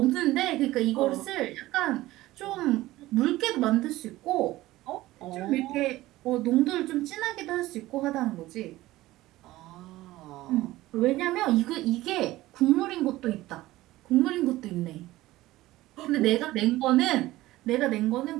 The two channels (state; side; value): quieter; left; 17.1 dB